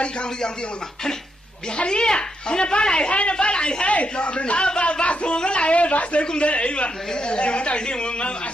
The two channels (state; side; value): normal; both; correlation 0.80